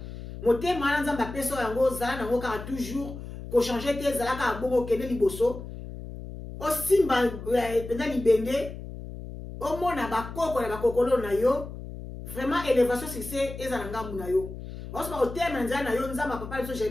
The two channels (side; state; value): left; noise; hum, 11 dB below the sound